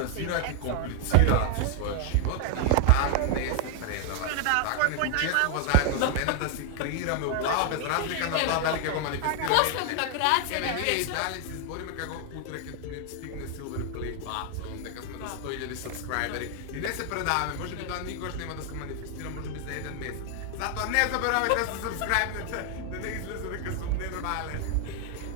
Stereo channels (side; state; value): both; different; correlation 0.00